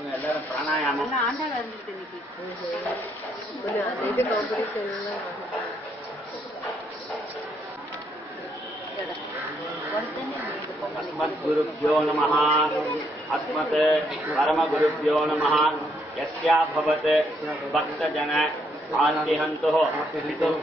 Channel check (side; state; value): both; normal; correlation 0.73